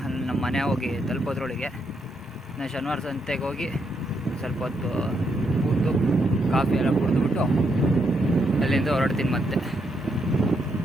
ಅಲ್ಲಿ ನಮ್ಮ ಮನೆ ಹೋಗಿ ತಲುಪೋದ್ರೊಳಗೆ. ಇನ್ನು ಶನಿವಾರ ಸಂತೆಗೆ ಹೋಗಿ ಸ್ವಲ್ಪ ಹೊತ್ತು ಕೂತು ಕಾಫಿ ಎಲ್ಲ ಕುಡಿದ್ಬಿಟ್ಟು ಅಲ್ಲಿಂದ ಹೊರಡ್ತೀನಿ ಮತ್ತೆ.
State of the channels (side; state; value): both; normal; correlation 0.78